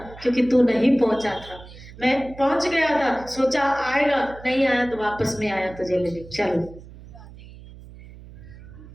क्योंकि तू नहीं पहुंचा था, मैं पहुंच गया था, सोचा आएगा, नहीं आया तो वापस में आया तुझे लेने। चल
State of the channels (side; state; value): right; noise; hum, 18 dB below the sound